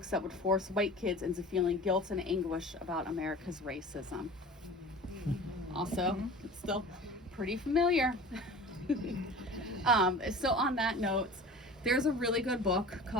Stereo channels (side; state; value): both; normal; correlation 0.39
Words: that would force white kids into feeling guilt and anguish about America's racism. Also, it's still pretty familiar. So on that note, there's a really good book